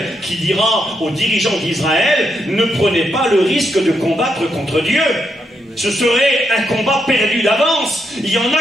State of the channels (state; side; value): normal; both; correlation 0.80